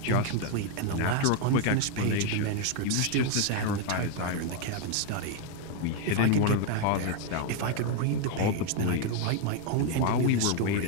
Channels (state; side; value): different; both; correlation 0.01